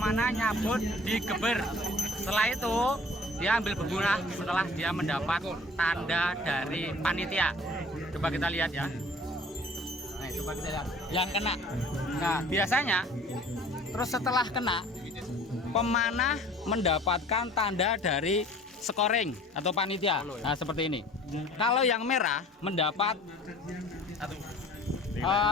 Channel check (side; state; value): both; normal; correlation 0.48